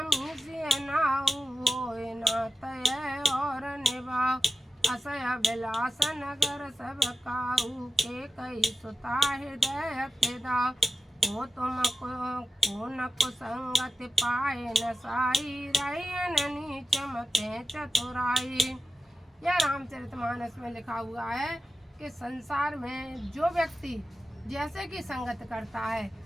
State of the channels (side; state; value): both; normal; correlation 0.94